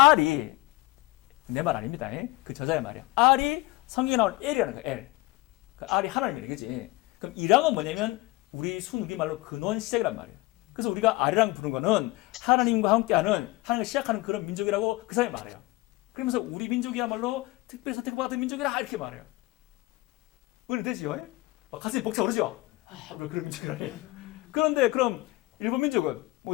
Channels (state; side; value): quieter; right; 21.2 dB